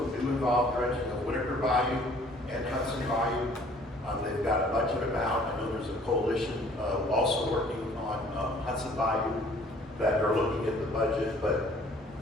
them do involve dredging of Whitaker Bayou and Hudson Bayou. They've got a budget amount. I know there's a coalition also working on Hudson Bayou that are looking at the budget. But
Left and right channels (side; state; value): both; normal; correlation 0.56